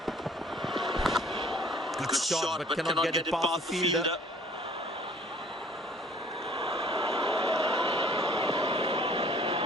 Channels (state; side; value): normal; both; correlation 0.55